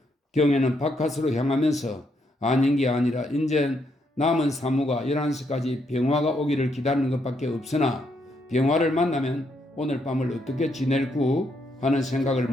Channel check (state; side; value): normal; both; correlation 0.76